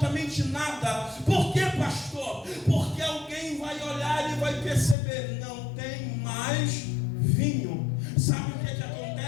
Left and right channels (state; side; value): drops out; right; at 5.0 s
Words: nada. Por quê, pastor? Porque alguém vai olhar e vai perceber: não tem mais vinho. Sabe o que